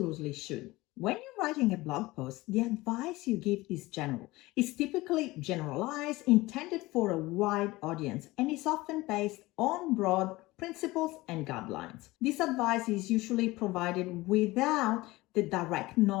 should. When you're writing a blog post, the advice you give is general. It's typically generalized, intended for a wide audience, and is often based on broad principles and guidelines. This advice is usually provided without the direct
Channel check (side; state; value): right; quieter; 19.9 dB